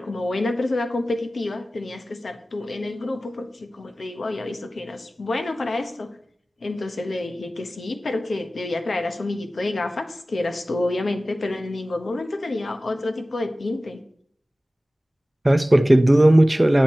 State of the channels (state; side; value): normal; both; correlation 0.97